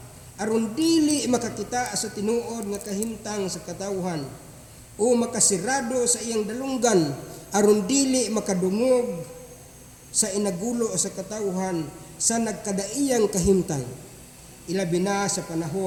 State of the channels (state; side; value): identical; both; correlation 1.00